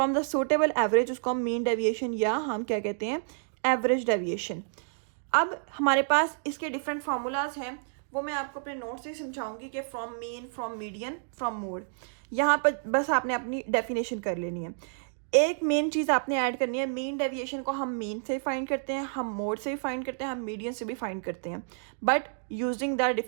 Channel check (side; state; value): left; silent; digital silence